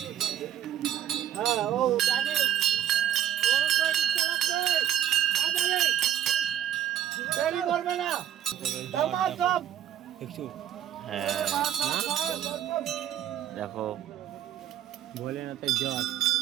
দেখো ভোলেনাথের জট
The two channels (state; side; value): quieter; left; 10.8 dB